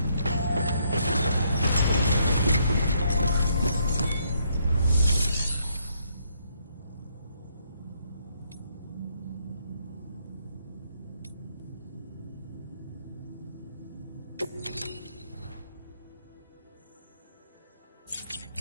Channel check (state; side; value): inverted; both; correlation -0.72